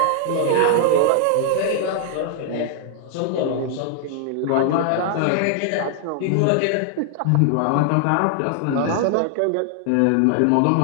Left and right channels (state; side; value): different; both; correlation 0.00